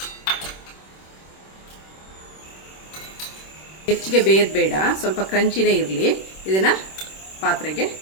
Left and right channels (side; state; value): right; late; 26 ms